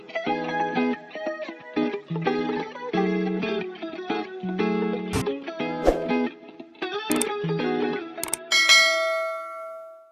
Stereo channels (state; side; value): identical; both; correlation 1.00